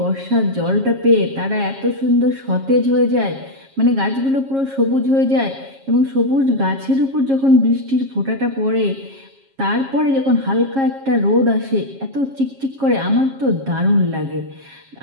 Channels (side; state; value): left; late; 7.4 ms